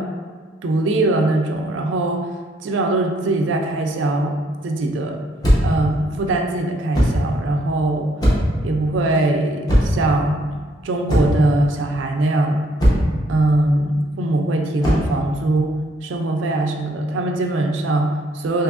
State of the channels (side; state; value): both; normal; correlation 0.69